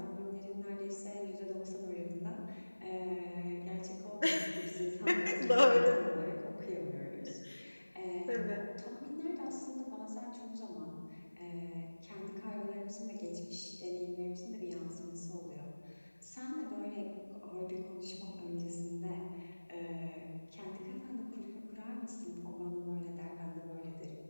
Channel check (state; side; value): inverted; both; correlation -1.00